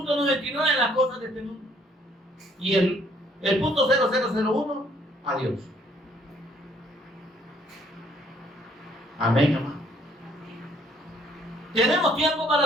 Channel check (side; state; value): both; normal; correlation 0.64